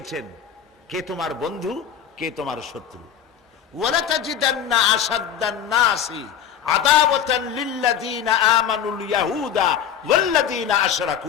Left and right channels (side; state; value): right; quieter; 9.0 dB